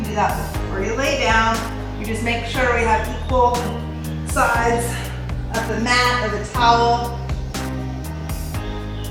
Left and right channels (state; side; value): identical; both; correlation 1.00